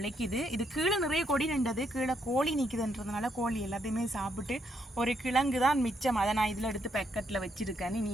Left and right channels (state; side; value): normal; both; correlation 0.76